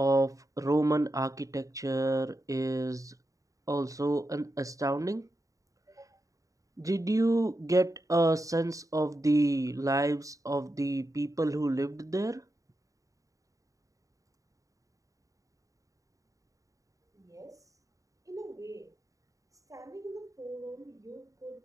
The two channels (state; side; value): late; left; 0.16 ms